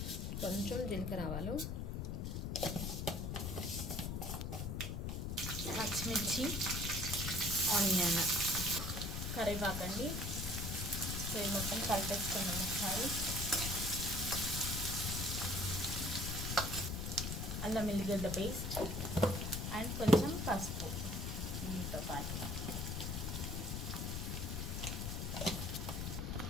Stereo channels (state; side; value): noise; left; rumble, 2 dB below the sound